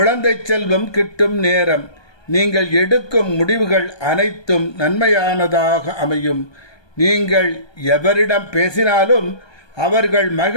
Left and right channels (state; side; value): late; right; 1.2 ms